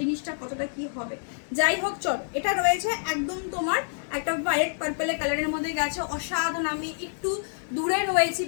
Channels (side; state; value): right; silent; digital silence